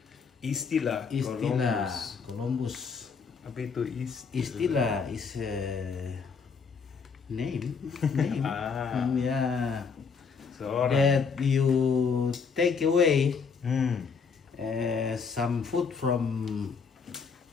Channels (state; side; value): quieter; right; 5.6 dB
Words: Istilah Columbus. Apa itu Istilah is name. Ya. That you take away some food from